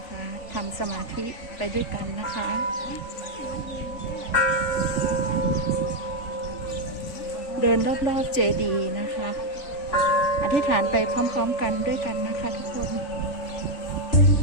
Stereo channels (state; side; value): late; right; 3.4 ms